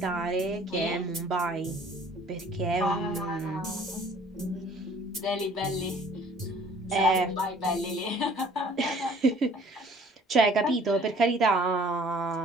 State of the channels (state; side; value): normal; both; correlation 0.54